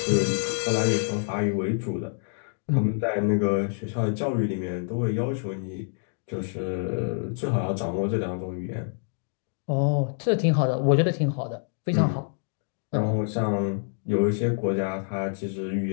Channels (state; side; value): silent; right; digital silence